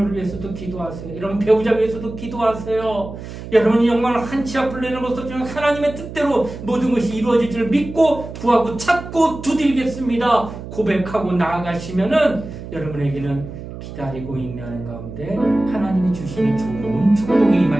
위해서도 기도하세요. 여러분 배우자 위해서도 기도하세요. 여러분이 정말 한치 앞을 내놓고서 하나님의 뜻대로 모든 것이 이루어질 줄 믿고 구하고 찾고 두드리겠습니다. 고백하고 나아가시면은 여러분에게는 기다리고 있는 가운데 하나님이 주시는 좋은 축복이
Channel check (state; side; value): noise; right; hum, 11 dB below the sound